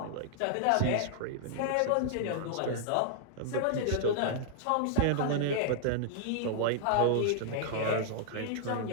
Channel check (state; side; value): different; both; correlation -0.01